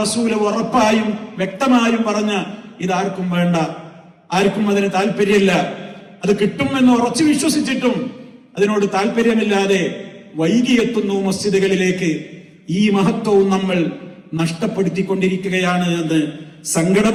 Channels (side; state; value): both; identical; correlation 1.00